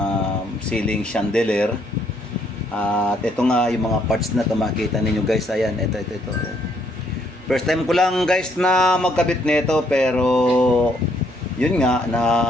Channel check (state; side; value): normal; both; correlation 0.70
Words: ceiling chandelier. At ito nga yung mga parts na makita ninyo guys. Ayan, ito. First time ko lang guys na magkabit nito, pero yun nga na